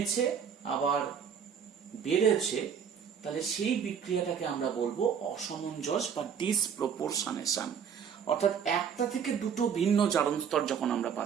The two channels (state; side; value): quieter; left; 7.4 dB